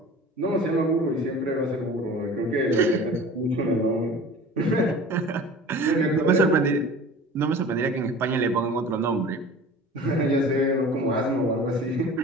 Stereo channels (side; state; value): both; normal; correlation 0.41